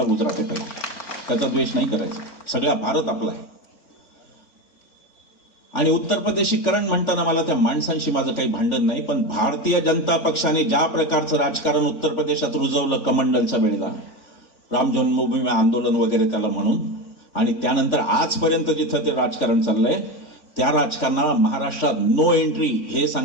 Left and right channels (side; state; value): right; late; 3.5 ms